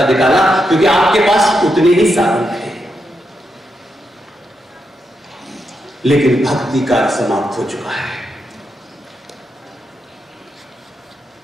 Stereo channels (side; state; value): both; normal; correlation 0.84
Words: निकाला, क्योंकि आपके पास उतने ही साधन थे। लेकिन भक्ति काल समाप्त हो चुका है।